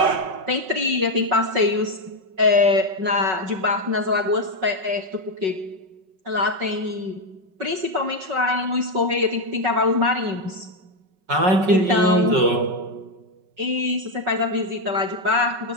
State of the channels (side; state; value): left; late; 5.3 ms